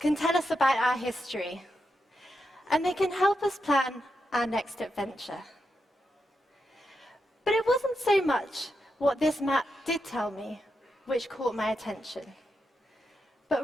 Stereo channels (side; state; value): both; normal; correlation 0.85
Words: tell us about our history, and they can help us plan our next adventure. But it wasn't so much what this map did tell me which caught my attention, but